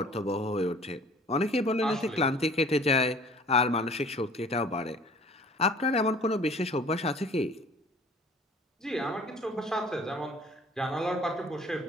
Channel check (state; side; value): normal; both; correlation 0.50